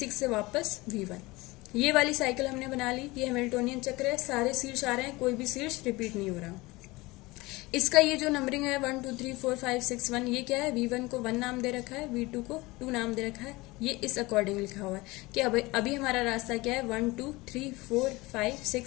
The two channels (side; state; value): right; quieter; 21.9 dB